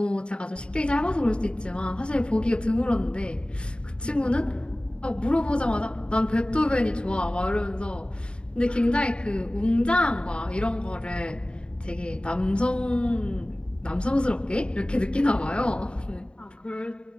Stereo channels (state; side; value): late; right; 0.053 ms